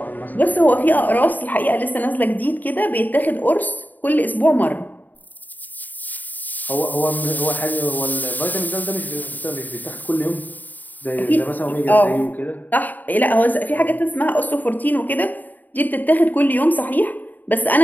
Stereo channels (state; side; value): late; right; 0.085 ms